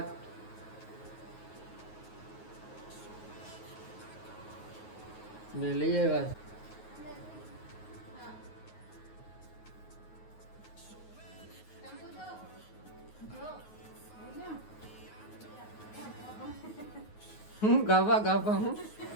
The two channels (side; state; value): right; late; 9.4 ms